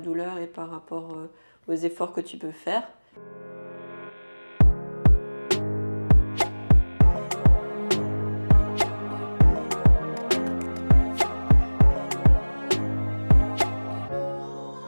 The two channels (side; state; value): both; inverted; correlation -1.00